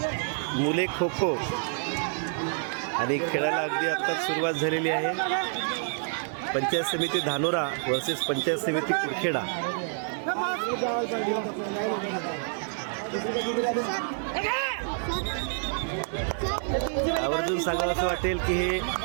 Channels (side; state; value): left; silent; 59 dB below the other